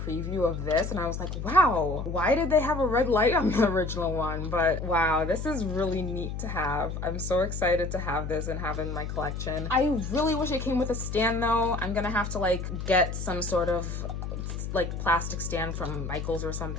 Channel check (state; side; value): noise; left; hum, 5 dB below the sound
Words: of this, and I was like, wow, why did they have a red light on the original one? But wow, this is really neat to have. I'm so excited to have this and have it in my collection. I really wish it came with a stand though. I'm gonna have to like get some sort of like plastic stand from Michael's or